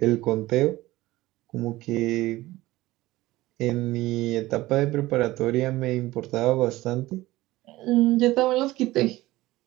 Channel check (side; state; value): left; quieter; 17.9 dB